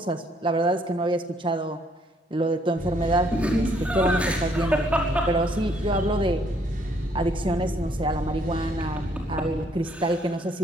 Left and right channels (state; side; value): normal; both; correlation 0.67